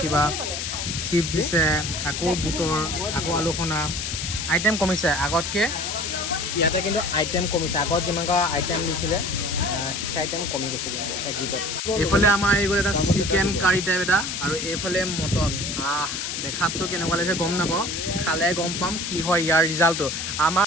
কিবা, চিপছ দিছে, আকৌ বুটৰ, আকৌ আলু সনা। আইটেম কমিছে আগতকৈ, ইয়াতে কিন্তু আইটেম কমিছে। আগত যিমান আইটেম দিছিলে সেই আইটেম কমি গৈছে কিন্তু এক্সিটত। এইফালে আমাৰ আহি গ'ল এটা চিকেন কাৰী টাইপ এটা, আৰু এইফালে মটন। দেখাততো কেনেকুৱা লাগিছে গম নাপাওঁ, খালে গম পাম কি হয় ইয়াৰ ৰিজাল্টটো।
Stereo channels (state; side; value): noise; left; hiss, 4 dB below the sound